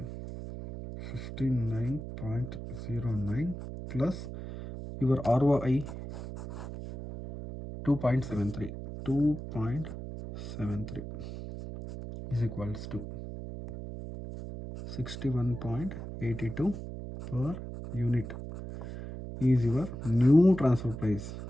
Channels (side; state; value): right; noise; hum, 9 dB below the sound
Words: plus your ROI 2.73 is equals to 61.82 per unit is your new transfer price,